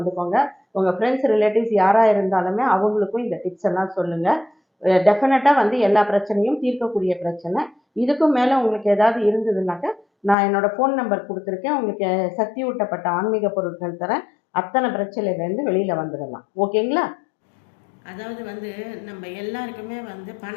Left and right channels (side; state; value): right; drops out; at 10.4 s